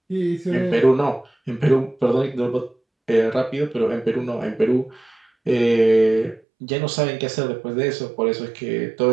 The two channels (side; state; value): left; drops out; at 6.4 s